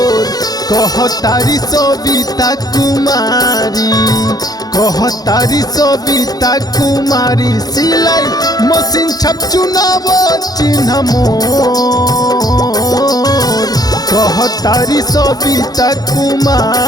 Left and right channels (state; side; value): late; right; 0.19 ms